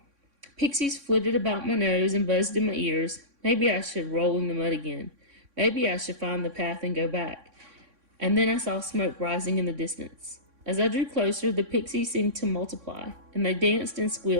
Pixies flitted about my nose and buzzed in my ears. Maybe I should roll in the mud again. Maybe I should find the path and go back. And then I saw smoke rising in the distance. As I drew closer, the pixies seemed to multiply, and they danced and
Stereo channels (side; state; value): left; late; 3.6 ms